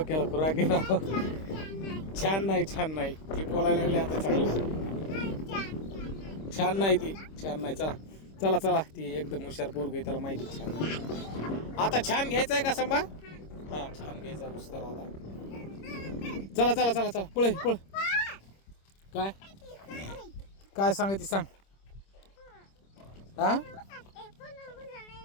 खुराक गेला. छान नाही ती बोलायला लागली आता चांगलं. छान नाही ती, छान नाही. चला ती एकदम हुशार पोरग आहे, त्याला माहिती छान नाही. आता छान घ्यायचं आहे का संभा? हा छान घ्यायचा पुस्तकाला आता. चला पळ. काय सांगायची सांग. हा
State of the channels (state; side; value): late; right; 26 ms